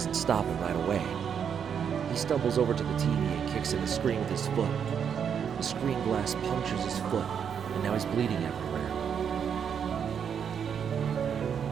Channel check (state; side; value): quieter; left; 7.6 dB